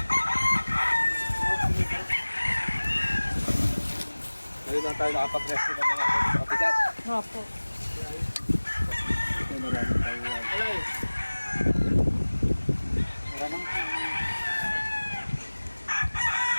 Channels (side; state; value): both; inverted; correlation -1.00